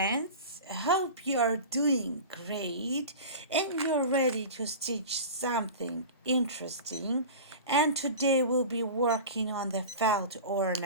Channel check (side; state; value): both; inverted; correlation -0.33